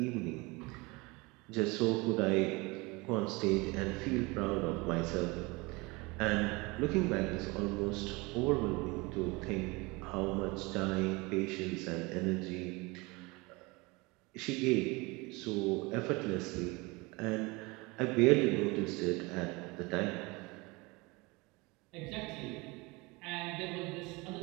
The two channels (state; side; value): quieter; left; 25.0 dB